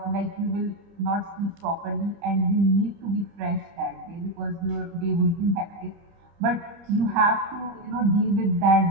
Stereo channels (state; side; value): late; left; 30 ms